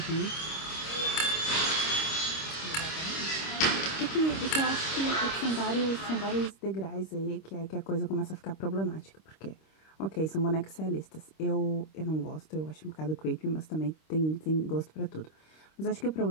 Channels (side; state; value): right; late; 26 ms